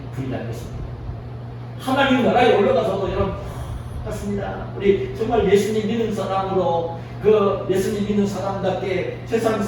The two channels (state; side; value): identical; both; correlation 1.00